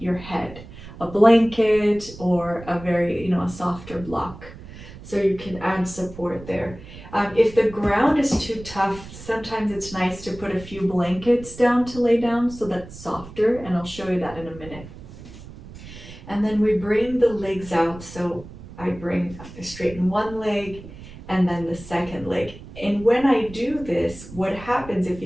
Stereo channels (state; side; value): noise; right; rumble, 16 dB below the sound